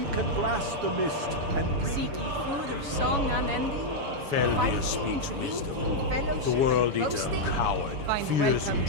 can blast the mist and bring... Seek ye food or song unending? Feldir Fighting, speaks drinking, wisdom. fellowship, The world and eater, boasting? coward, Find fears welcome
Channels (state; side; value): late; left; 7.1 ms